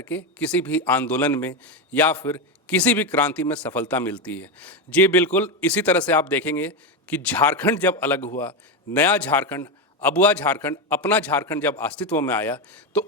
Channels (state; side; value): normal; both; correlation 0.12